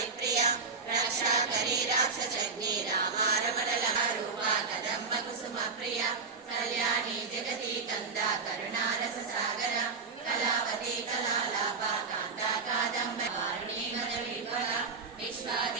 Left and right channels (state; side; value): quieter; left; 4.7 dB